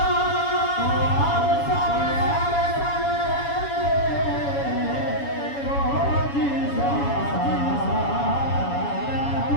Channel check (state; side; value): late; right; 7.1 ms